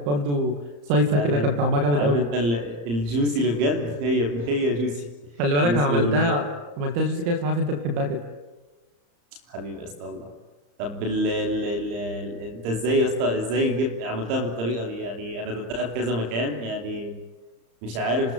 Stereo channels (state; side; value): late; left; 35 ms